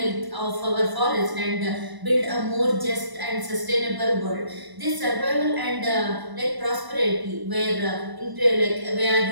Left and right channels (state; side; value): late; left; 1.0 ms